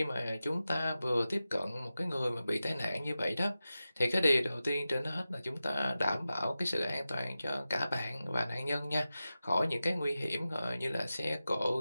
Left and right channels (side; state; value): both; inverted; correlation -0.94